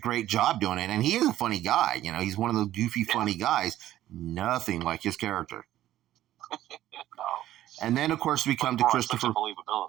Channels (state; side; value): quieter; left; 13.4 dB